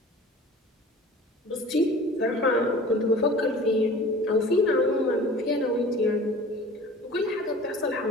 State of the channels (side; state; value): both; normal; correlation 0.43